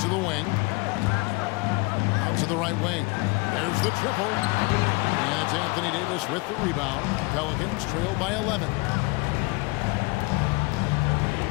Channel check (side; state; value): right; quieter; 26.6 dB